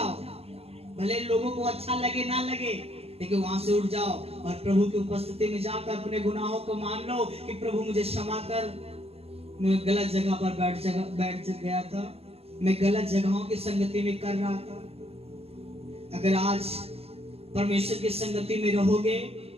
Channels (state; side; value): late; left; 0.29 ms